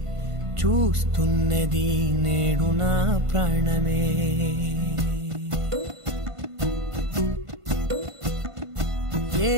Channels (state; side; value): late; left; 1.5 ms